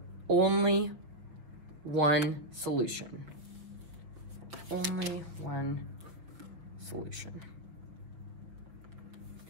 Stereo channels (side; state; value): left; late; 5.7 ms